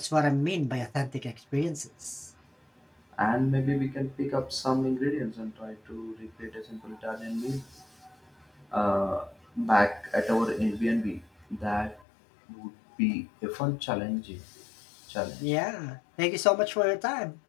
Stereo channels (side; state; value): right; drops out; at 12.0 s